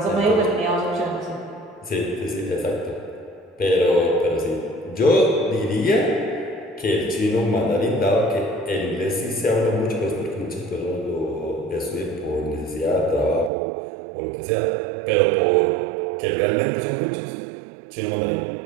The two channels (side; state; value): left; drops out; at 13.5 s